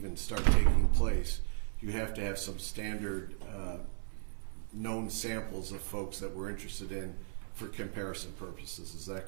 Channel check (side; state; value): left; silent; 54 dB below the other